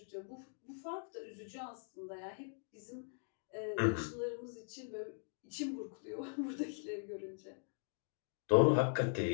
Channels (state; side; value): silent; right; 51 dB below the other